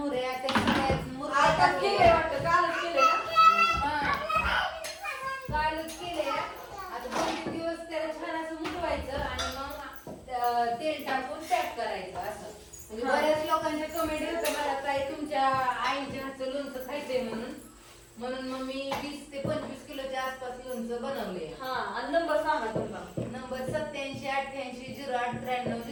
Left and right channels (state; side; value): identical; both; correlation 1.00